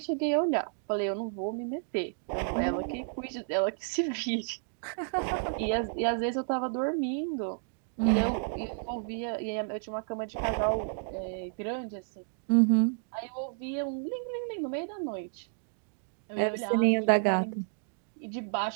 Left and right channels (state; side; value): silent; left; digital silence